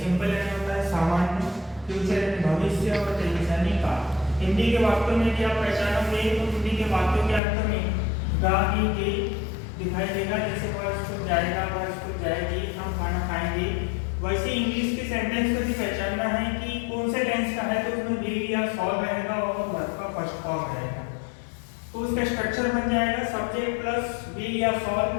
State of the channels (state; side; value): drops out; right; at 7.4 s